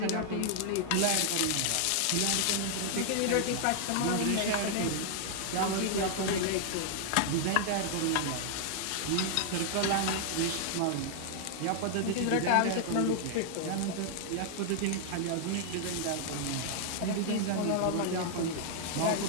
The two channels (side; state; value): both; different; correlation 0.00